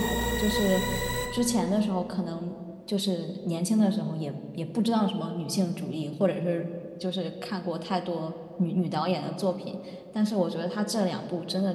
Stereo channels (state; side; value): identical; both; correlation 1.00